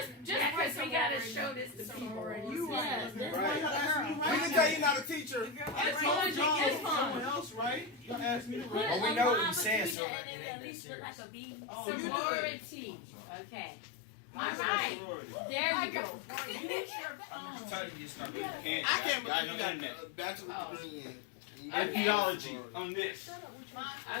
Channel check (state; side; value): drops out; right; at 10.0 s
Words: Just because we gotta show this to people. You Yes, right. Right. We can tell you're not a teacher. I told y'all someone else, right? Y'all asked me to Put write. a we know what line you saying, between so it it and ain't at that least look like a B. Oh, you did. Sorority. Okay. All Mine's not right. sorority. There you go. Use your I'm phone. just telling you, it's not good. I can't I believe know you got internet. a bachelor's Oh. degree in. And theology on this.